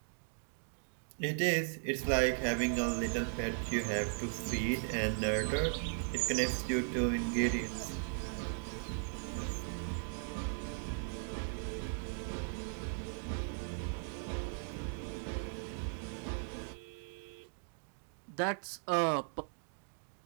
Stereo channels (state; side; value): silent; left; 53 dB below the other